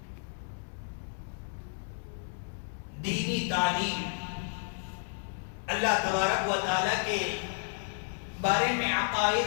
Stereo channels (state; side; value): silent; right; 56 dB below the other